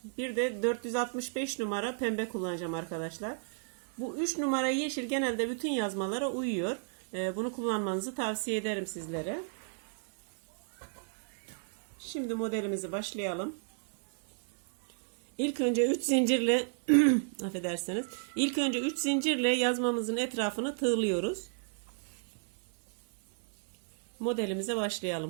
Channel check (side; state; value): left; silent; digital silence